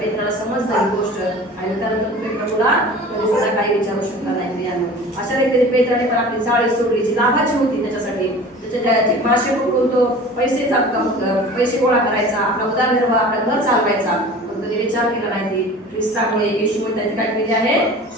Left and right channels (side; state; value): both; normal; correlation 0.40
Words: पेत्राला समजलं ही गोष्ट, आणि त्यानंतर तुम्ही प्रभूला कधी सुद्धा काही विचारू शकता नाही. अशा रीतीने पेत्राने पण आपली जाळी सोडली जी लाभाची होती त्याच्यासाठी, त्याचे मासे पकडून तो पैसे गोळा करायचा, आपला उदरनिर्वाह, आपला घर चालवायचा, पण त्याने विचार केला नाही. ख्रिस्तामुळे येशूमुळे त्यांनी काय केले आहे,